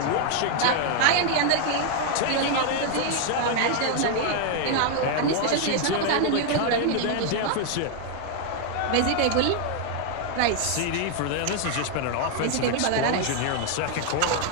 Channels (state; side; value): different; both; correlation 0.00